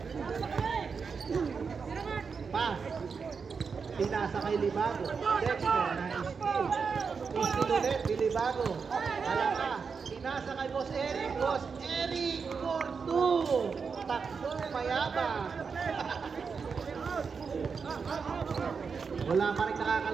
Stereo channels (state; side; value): quieter; left; 5.5 dB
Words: Pass. Pinasa kay Libago. Dexter na steal. Steal ulit, Libago. Alaka. Pinasa kay Boss Eric for 2. Takbo, mayabang. Wala pa rin